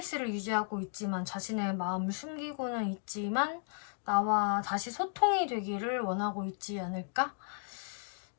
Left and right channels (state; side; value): silent; right; 55 dB below the other